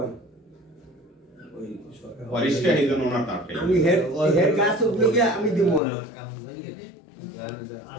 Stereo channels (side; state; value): right; drops out; at 5.8 s